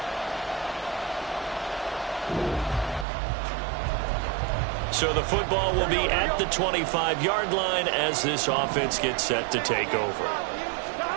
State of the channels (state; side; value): drops out; left; at 3.1 s